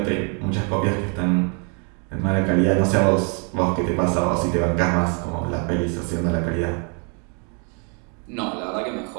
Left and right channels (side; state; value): left; quieter; 37.1 dB